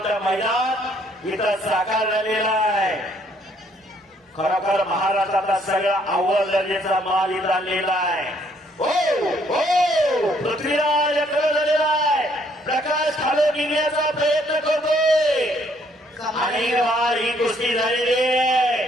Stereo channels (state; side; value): normal; both; correlation 0.66